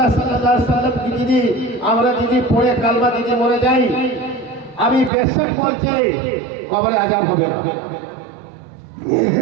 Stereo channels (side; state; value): left; drops out; at 5.1 s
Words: সাল্লাল্লাহু আলাইহি সাল্লাম কি যদি আমরা যদি পড়ে কালমা দিতে মরে যাই, আমি বেশক বলছি কবরে আযাব হবে না,